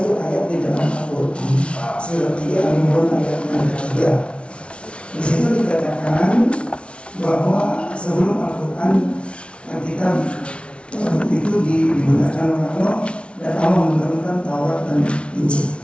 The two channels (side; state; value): right; late; 0.059 ms